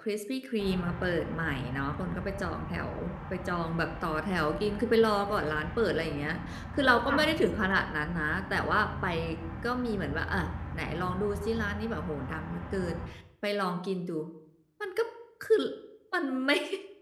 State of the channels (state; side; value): identical; both; correlation 1.00